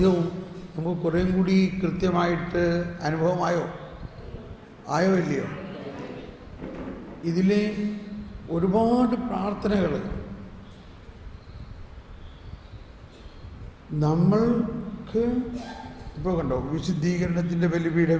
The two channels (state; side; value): identical; both; correlation 1.00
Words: നമുക്ക് കുറേയും കൂടി കൃത്യമായിട്ട് അനുഭവമായോ ഇല്ലയോ? ഇതിലെ ഒരുപാട് പ്രാർത്ഥനകൾ നമ്മൾക്ക് ഇപ്പോൾ കണ്ടോ, വിശുദ്ധീകരണത്തിൻ്റെ